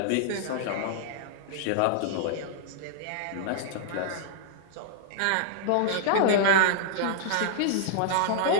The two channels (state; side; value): different; both; correlation -0.01